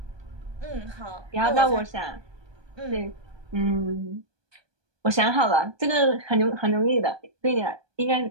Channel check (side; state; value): left; late; 1.2 ms